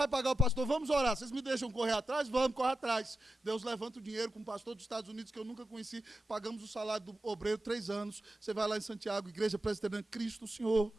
pagar o pastor. Vamos orar. Vocês me deixam correr atrás? Vamos, correr atrás. Deus levanta o dinheiro com um pastor dos Estados Unidos que eu nunca conheci. Pagamos o salário do obreiro 3 anos. Você vai lá em Santiago, igreja presbiteriana, Cristo o Senhor.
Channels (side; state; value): both; normal; correlation 0.89